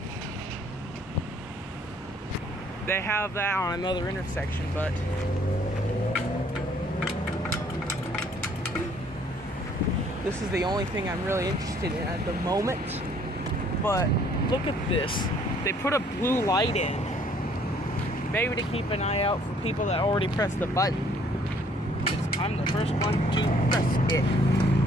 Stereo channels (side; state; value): both; normal; correlation 0.61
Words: They have that on another intersection, but this is the only thing I'm really interested in at the moment. But look at this. They put a blue light in. Maybe to keep an eye out for people that already pressed the button. Because I'm the first one to press it.